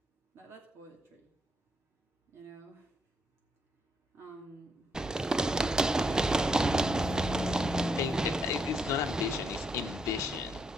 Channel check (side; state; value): both; normal; correlation 0.76